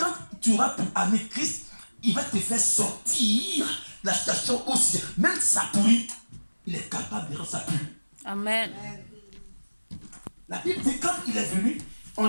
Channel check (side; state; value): both; inverted; correlation -1.00